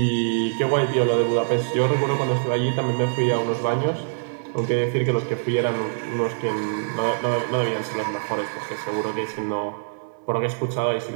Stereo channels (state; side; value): silent; left; 63 dB below the other